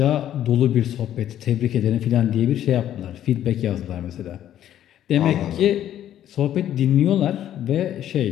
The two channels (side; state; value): right; quieter; 11.4 dB